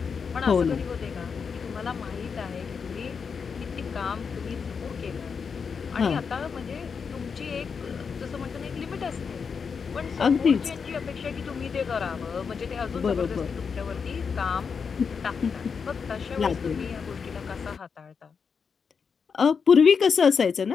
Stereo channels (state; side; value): quieter; right; 5.9 dB